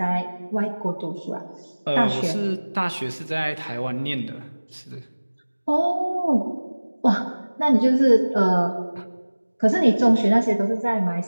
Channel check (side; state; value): both; inverted; correlation -1.00